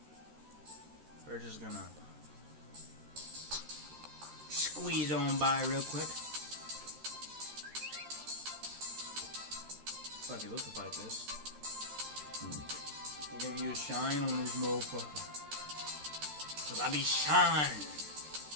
We're just gonna squeeze on by real quick. Fuck it, let's fight this. We're gonna use shine on this motherfucker. Cause I be shine.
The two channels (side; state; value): left; late; 13 ms